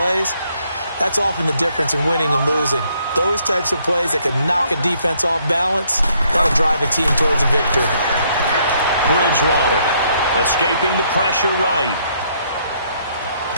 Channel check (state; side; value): inverted; both; correlation -0.69